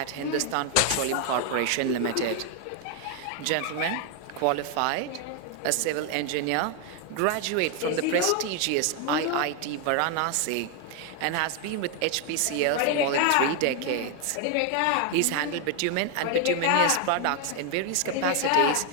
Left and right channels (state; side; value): different; both; correlation 0.01